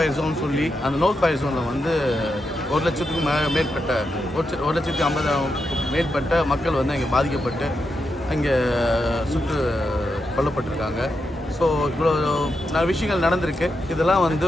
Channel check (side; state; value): both; normal; correlation 0.85